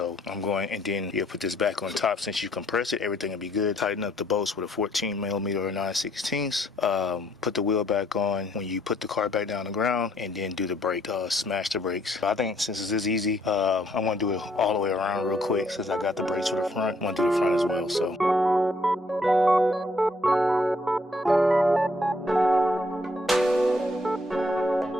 I'm going, and then you'll put this back on top. Since you compress it, everything will be good. Tighten up the bolts with a 14 millimeter or 9/16. Put the wheel back on when you put the car back down the ground, and then do the brake, smash the brakes. I think since this is easy, I want to do it all the way around real quick. Since I got the brakes for the front, I want to do the front as well. So.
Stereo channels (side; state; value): both; normal; correlation 0.68